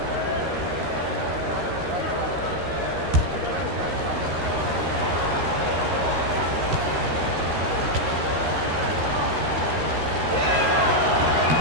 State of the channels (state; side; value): late; left; 13 ms